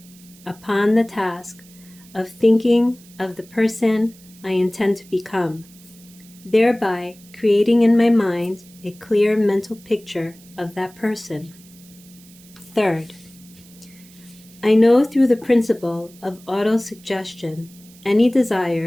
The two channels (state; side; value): noise; right; hiss, 24 dB below the sound